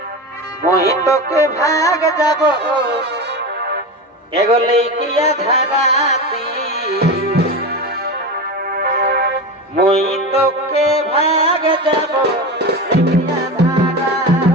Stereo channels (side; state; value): both; normal; correlation 0.23